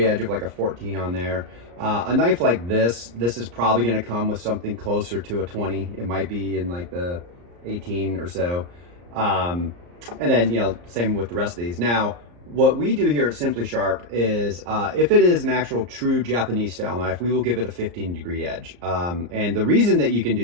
edge of like a 14 on there. A knife like this is probably going to come with something closer to a 20. It might be in like the 18 or so. And then, same with the rest of these. Now, what we do here at Simply Sharp is if it is an actual true Japanese style knife, we will give it a 15-degree edge. And the reason that you can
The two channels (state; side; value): late; left; 34 ms